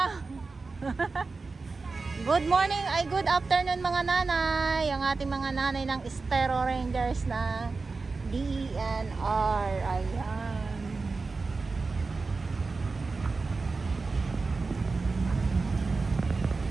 Good morning, ay good afternoon mga nanay. Ang ating mga nanay ng Estero Rangers na DENR. Ayan.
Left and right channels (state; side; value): quieter; left; 4.1 dB